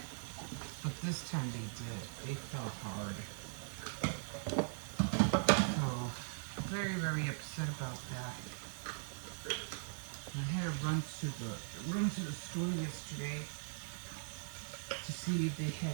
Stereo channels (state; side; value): silent; left; 51 dB below the other